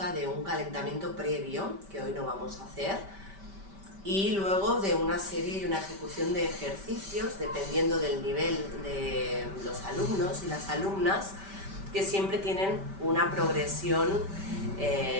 de un calentamiento previo, que hoy no vamos a hacer, y luego de una serie y una ejecución de ejercicios, dependiendo del nivel de los alumnos y las alumnas, que siempre tienen una progresión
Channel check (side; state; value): left; late; 5.1 ms